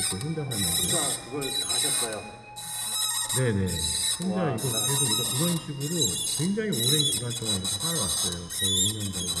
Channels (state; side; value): identical; both; correlation 1.00